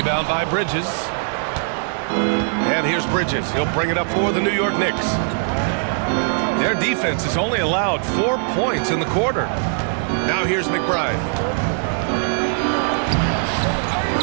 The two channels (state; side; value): silent; left; 65 dB below the other